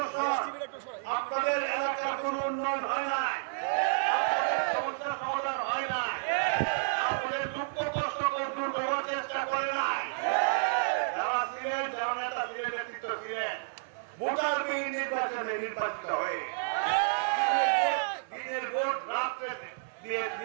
আপনাদের এলাকার কোন উন্নয়ন হয় নাই, সমস্যার সমাধান হয় নাই, আপনাদের দুঃখ কষ্ট দূর করার চেষ্টা করে নাই। যারা ছিলেন, যারা নেতা ছিলেন, নেতৃত্ব ছিলেন, ভোটারবিহীন নির্বাচনে নির্বাচিত হয়ে দিনের ভোট রাত্রে দিয়ে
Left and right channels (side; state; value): left; silent; 55 dB below the other